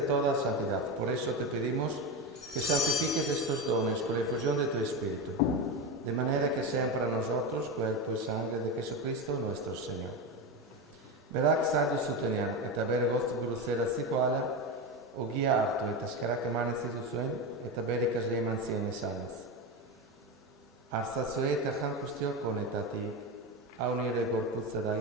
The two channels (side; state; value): both; normal; correlation 0.17